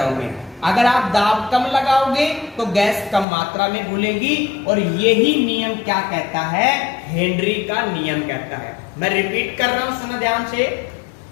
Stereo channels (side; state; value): right; drops out; at 3.2 s